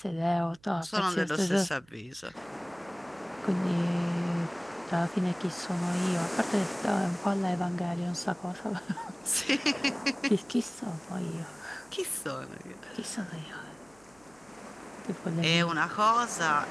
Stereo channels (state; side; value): noise; right; hum, 30 dB below the sound